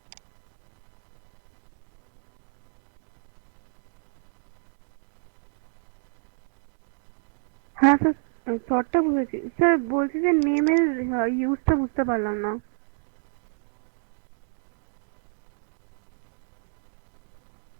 বোঝা গেল না? বোঝা গেল না? হ্যালো? হ্যাঁ স্যার, শর্টটা বুঝেছি স্যার, বলছি যে নেমের ইউজটা বুঝতে পারলাম না। এইটা নেম বলতে ক্যারেক্টার। ক্যারেক্টার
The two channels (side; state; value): left; silent; digital silence